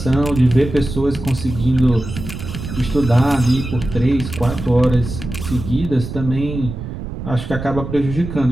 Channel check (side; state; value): right; noise; rumble, 8 dB below the sound